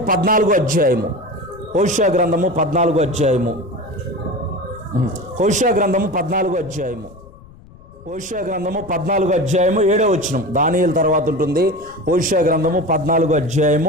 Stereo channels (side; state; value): left; noise; rumble, 22 dB below the sound